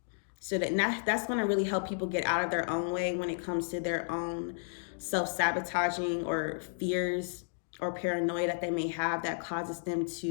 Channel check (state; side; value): silent; right; digital silence